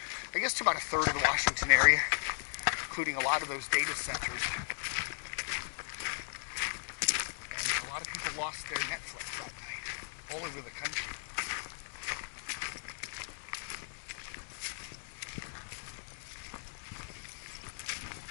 I guess, to about a third of the Washington area, including a lot of those data centers. And a lot of people lost their Netflix that night, all over the country.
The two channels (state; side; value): silent; right; digital silence